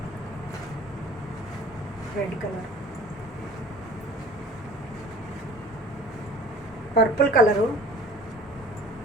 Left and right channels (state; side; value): normal; both; correlation 0.46